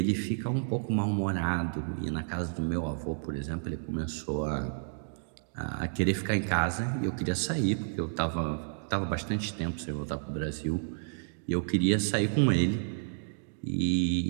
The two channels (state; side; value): silent; left; digital silence